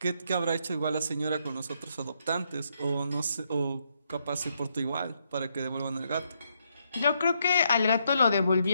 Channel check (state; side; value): inverted; both; correlation -0.76